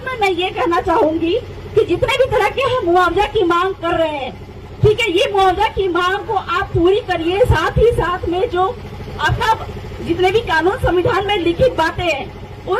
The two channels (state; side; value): identical; both; correlation 1.00